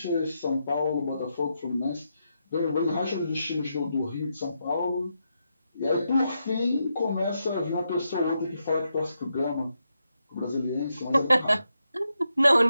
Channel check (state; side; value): inverted; both; correlation -0.84